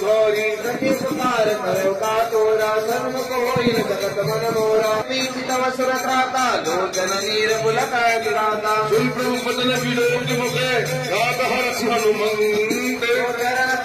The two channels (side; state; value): both; identical; correlation 1.00